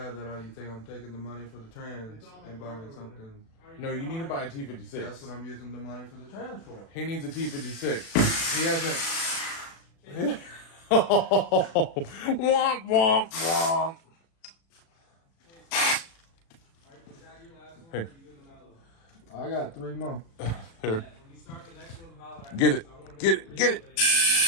that you think I'm taking the money for the trans and buying something. no, you need to buy a That's T56. what I'm using the money for the trans for. He needs a T56. He hasn't. Womp womp womp. Hey, I got 3 more. here. Get it. Get it. Get it.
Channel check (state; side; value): late; right; 36 ms